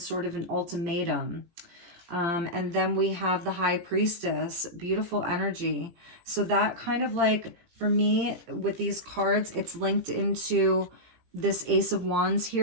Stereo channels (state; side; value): late; left; 18 ms